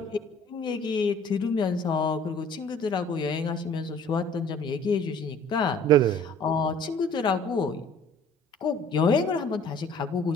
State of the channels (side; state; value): both; normal; correlation 0.52